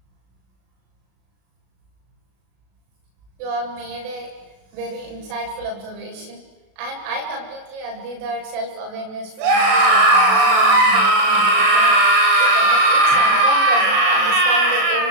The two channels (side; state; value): left; late; 37 ms